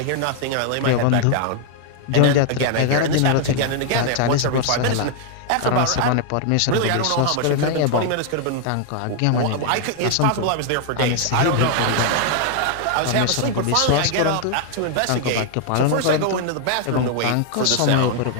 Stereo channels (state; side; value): different; both; correlation 0.00